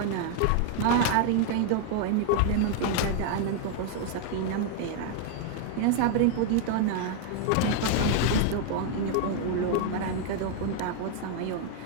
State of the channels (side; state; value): both; different; correlation 0.00